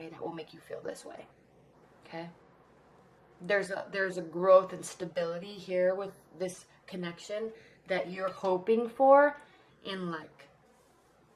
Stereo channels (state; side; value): identical; both; correlation 1.00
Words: that will make you feel this way. Okay? There's a growth and stability here with this connection that you're hoping for in like.